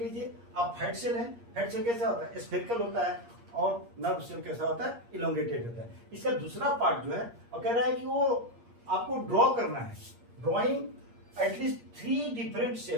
लीजिए आप फैट सेल है, फैट सेल कैसा होता है, स्फेरिकल होता है, और नर्व सेल कैसा होता है, इलोंगेटेड होता है। इसका दूसरा पार्ट जो है और कह रहा है कि वो आपको ड्रॉ करना है, ड्रॉइंग एटलीस्ट 3 डिफरेंट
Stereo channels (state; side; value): late; left; 8.5 ms